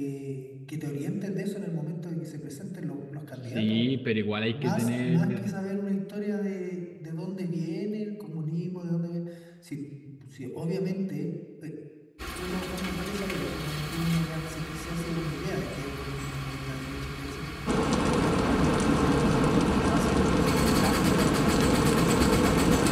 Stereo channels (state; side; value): identical; both; correlation 1.00